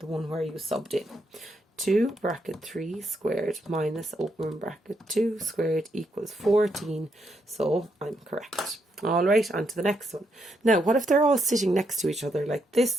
one where you subbed in. 2 bracket 3 squared minus, open bracket, 2 squared equals 14. So I'm correct. All right, on to the next one. Now, what if they're all sitting next to each other like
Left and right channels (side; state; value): both; normal; correlation 0.78